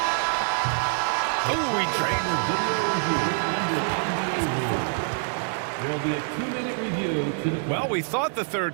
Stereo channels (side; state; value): left; silent; digital silence